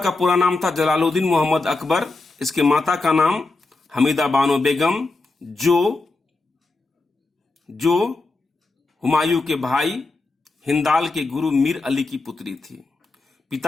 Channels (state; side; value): quieter; right; 3.4 dB